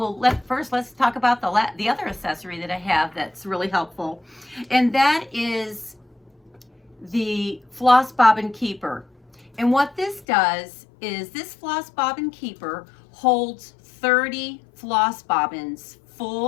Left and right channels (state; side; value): drops out; right; at 10.2 s